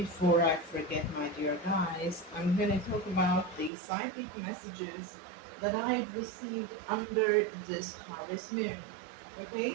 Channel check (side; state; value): left; drops out; at 3.7 s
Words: I forget, my dear guys, I'm going to talk about the psychic messages that I've received under this harvest moon. Okay,